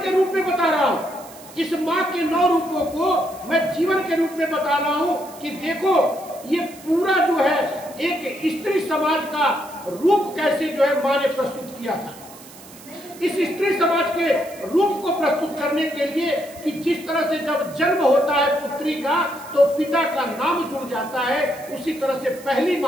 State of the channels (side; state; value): right; noise; hiss, 20 dB below the sound